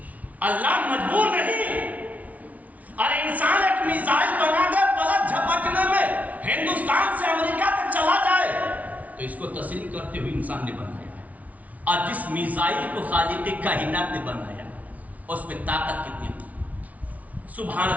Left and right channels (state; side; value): late; left; 0.070 ms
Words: اللہ مجبور نہیں۔ اور انسان ایک میزائل بنا دے پلک جھپکنے میں ہندوستان سے امریکہ تک چلا جائے تو اس کو تسلیم کرتے ہوئے انسان نے بنایا ہے۔ اور جس میزائل کو خالق کائنات نے بنایا اس میں طاقت کتنی ہے؟ سبحان